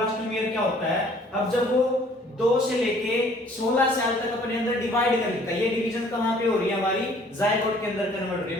क्या होता है, अब जब वो 2 से लेके 16 साल तक अपने अंदर डिवाइड कर लेता है, ये डिवीजन कहां पे हो रही है, हमारी जाइगोट के अंदर कन्वर्ट हो रही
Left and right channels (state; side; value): normal; both; correlation 0.57